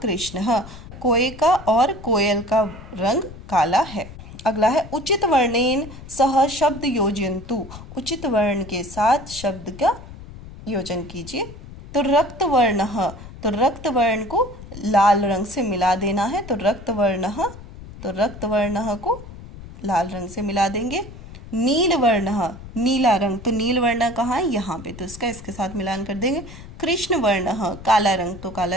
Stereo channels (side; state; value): left; noise; rumble, 15 dB below the sound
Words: कृष्णः, कोए का और कोयल का रंग काला है। अगला है उचित वर्णेन सह शब्द योजयन्तु, उचित वर्ण के साथ शब्द का योजन कीजिए। तो रक्त वर्णः, तो रक्त वर्ण को लाल रंग से मिला देना है, तो रक्त वर्णः को लाल रंग से मिला देंगे। नील वर्णः, नीला रंग, तो नील वर्ण कहाँ है? यहाँ पे, तो इसका इसके साथ मिलान कर देंगे। कृष्ण वर्णः, काला रंग, तो